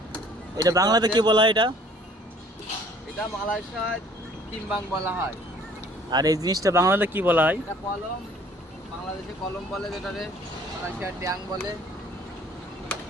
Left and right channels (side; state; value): both; normal; correlation 0.55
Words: এটা বাংলাতে কি বলা হয় এটা? এটা মালয়েশিয়ায় টিম্বাং বলা হয়। আর এই জিনিসটা বাংলাতে কি বলা হয়? এটা কলম, বাংলাদেশে কলম বলে, যেটারে মালয়েশিয়ার ট্যাং বলে।